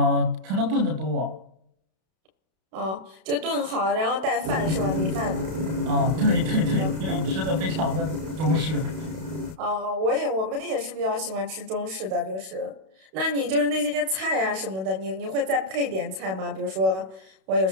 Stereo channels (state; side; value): late; left; 32 ms